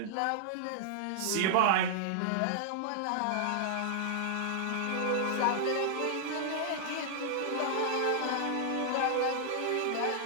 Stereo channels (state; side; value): different; both; correlation -0.01